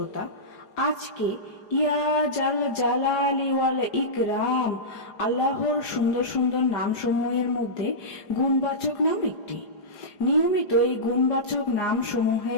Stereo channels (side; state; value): right; late; 4.9 ms